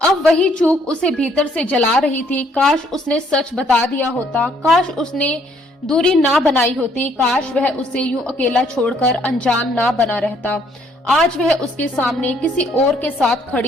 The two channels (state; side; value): normal; both; correlation 0.66